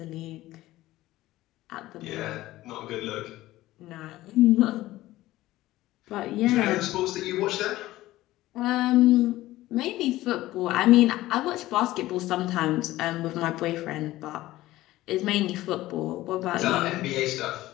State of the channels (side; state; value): right; quieter; 16.5 dB